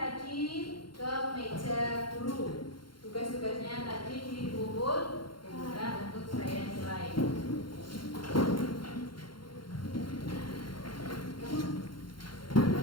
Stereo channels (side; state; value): right; late; 0.73 ms